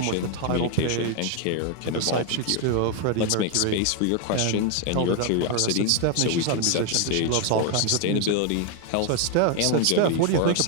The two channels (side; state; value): both; different; correlation 0.01